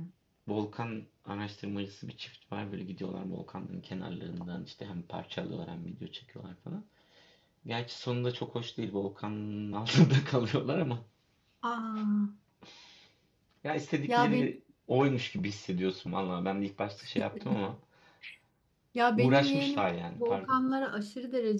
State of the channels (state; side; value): identical; both; correlation 1.00